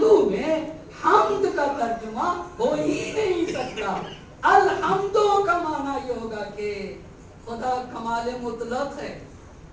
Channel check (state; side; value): identical; both; correlation 1.00